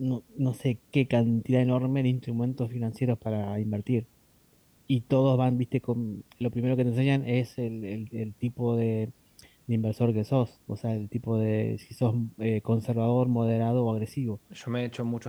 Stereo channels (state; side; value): identical; both; correlation 1.00